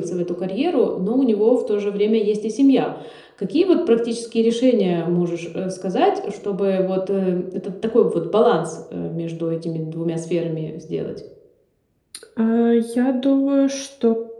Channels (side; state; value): both; identical; correlation 1.00